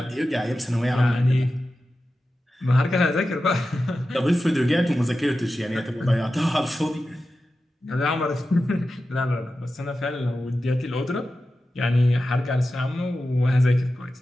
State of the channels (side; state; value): both; normal; correlation 0.93